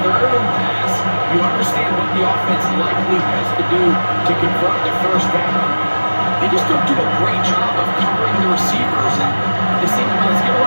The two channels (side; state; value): both; inverted; correlation -1.00